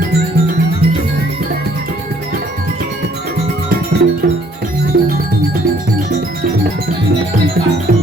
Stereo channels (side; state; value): both; normal; correlation 0.62